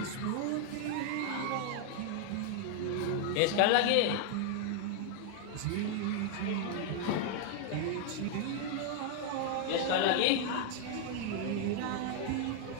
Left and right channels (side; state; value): both; different; correlation 0.00